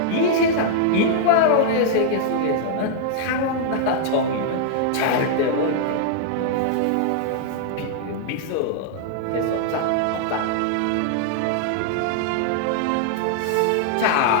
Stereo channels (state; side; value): different; both; correlation -0.01